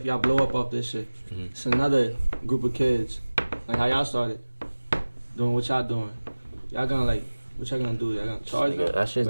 y'all blow up off this shit. It's another group of kids, like how y'all started, doing what y'all doing. Y'all gonna, like, what y'all gonna do? Y'all gonna charge them? That shit's Or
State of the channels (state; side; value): inverted; both; correlation -1.00